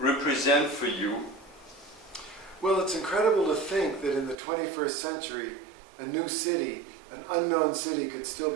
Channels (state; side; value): drops out; left; at 4.4 s